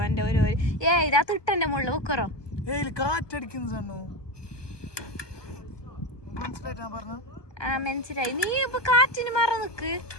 എന്റെ ഒരു ഇതാ തൊട്ടെന്റെ മുകളിൽ വെക്കറോ മനസ്സിലായി. നീ ഇപ്പൊ കാറ്റിന് മറ നിക്ക്.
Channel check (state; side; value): late; right; 1.2 ms